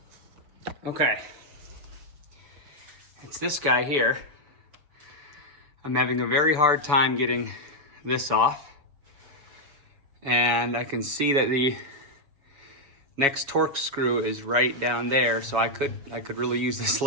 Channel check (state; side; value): late; left; 7.1 ms